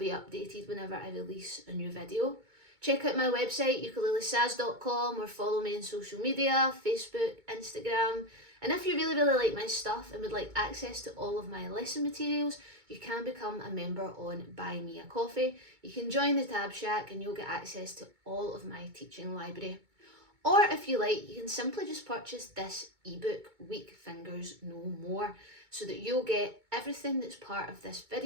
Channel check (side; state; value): left; late; 2.2 ms